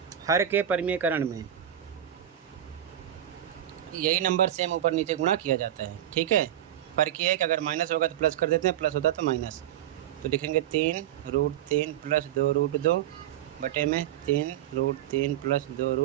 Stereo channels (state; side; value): quieter; left; 11.7 dB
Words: हर के परिमेयकरण में यही नंबर सेम ऊपर नीचे गुणा किया जाता है। ठीक है, फर्क ये है कि अगर माइनस होगा तो प्लस कर देते हैं, प्लस होता तो माइनस। तो लिखेंगे 3√3 + 2√2 बटे में 3√3 +